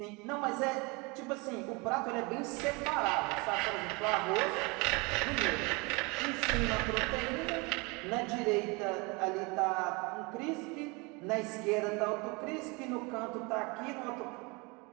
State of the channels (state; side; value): quieter; left; 27.8 dB